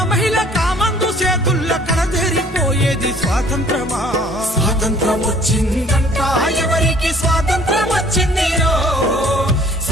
మహిళ కామందు చేతుల్ల కడదేరిపోయేది స్వాతంత్రమా. స్వాతంత్రం వచ్చిందంట ఎవరికి స్వాతంత్రం వచ్చిందిరో,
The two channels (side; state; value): both; normal; correlation 0.55